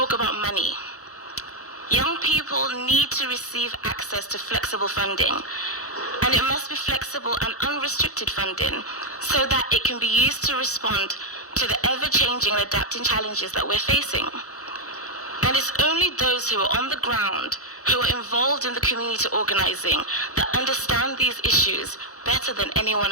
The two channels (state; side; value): late; right; 0.65 ms